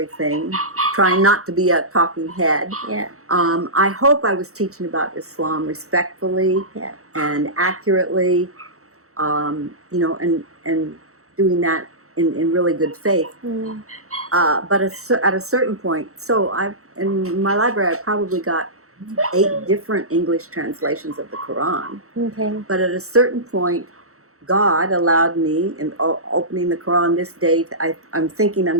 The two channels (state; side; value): late; left; 0.64 ms